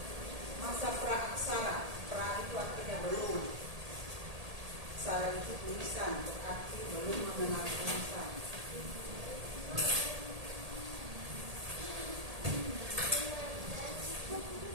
Masa praaksara, pra itu artinya belum. Aksara itu tulisan, berarti belum mengenal tulisan.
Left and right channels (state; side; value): late; left; 1.8 ms